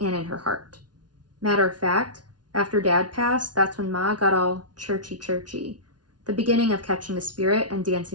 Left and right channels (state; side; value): late; left; 0.69 ms